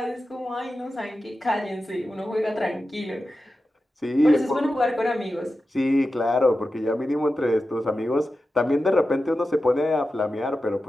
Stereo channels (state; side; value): normal; both; correlation 0.92